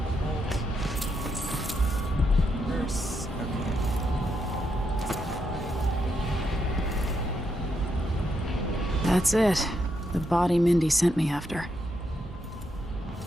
Verse. Okay. That's it. The body Mindy sent me after.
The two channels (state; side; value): normal; both; correlation 0.80